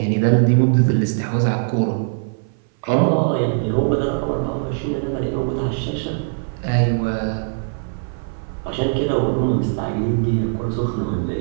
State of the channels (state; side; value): silent; left; 57 dB below the other